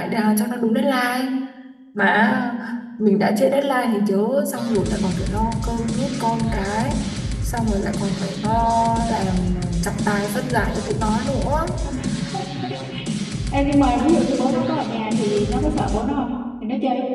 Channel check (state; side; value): identical; both; correlation 1.00